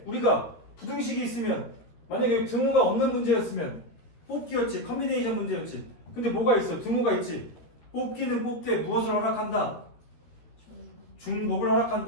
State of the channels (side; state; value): right; late; 13 ms